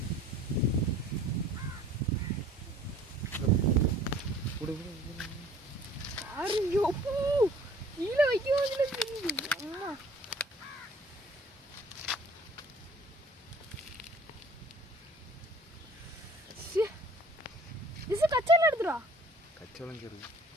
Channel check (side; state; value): both; normal; correlation 0.51